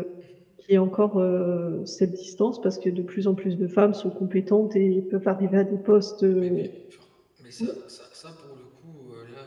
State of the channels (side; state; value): both; identical; correlation 1.00